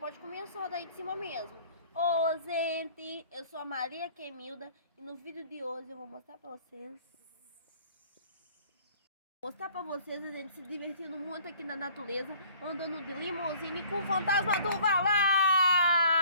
começar daí de cima mesmo. Ô, gente, eu sou a Maria Quemilda e no vídeo de hoje eu vou mostrar pra vocês. A gente se divertindo muito aqui na natureza, andando de limusine com o fantasma do Valão.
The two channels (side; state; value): both; inverted; correlation -0.54